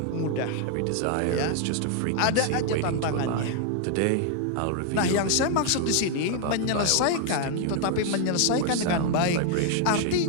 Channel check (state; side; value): different; both; correlation 0.00